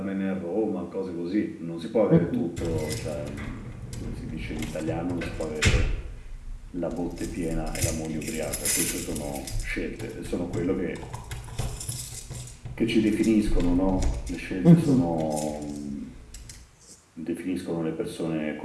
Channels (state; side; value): identical; both; correlation 1.00